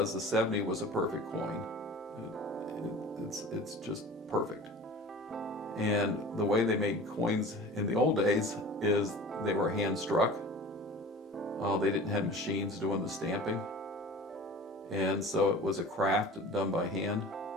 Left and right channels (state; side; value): normal; both; correlation 0.39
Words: the 70 was a perfect coin. It's just perfect. And the way they made coins in the old days is they were hand struck. They didn't have machines doing the stamping. And so it was a craft done by hand.